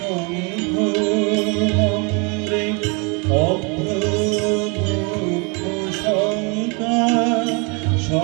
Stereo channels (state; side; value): quieter; left; 32.3 dB